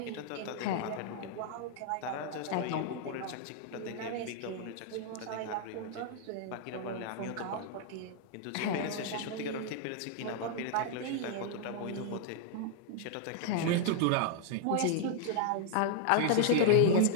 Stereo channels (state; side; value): different; both; correlation -0.01